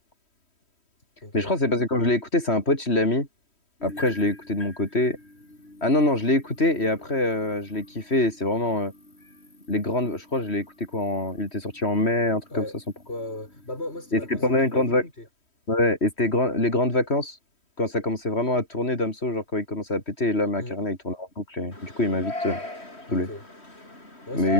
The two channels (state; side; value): late; right; 3.1 ms